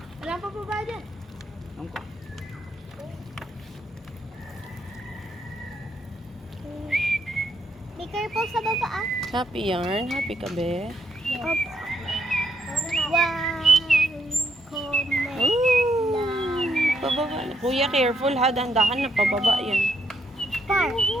Wala pa po ba dyan? Angko. Be careful sa baba ah. Happy yarn. Happy ka, be. Opo. Wow. Comment. Ooh. Pababa na. Kuya, careful ha. Dandahan na. Pababa yan. Par.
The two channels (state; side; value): normal; both; correlation 0.75